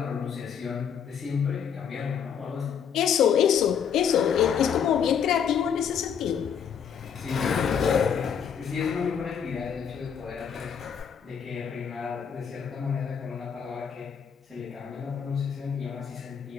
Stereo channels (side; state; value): right; quieter; 7.6 dB